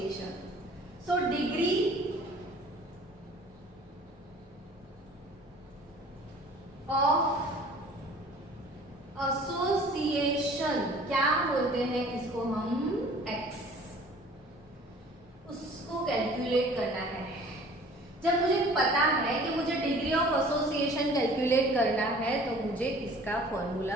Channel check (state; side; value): normal; both; correlation 0.49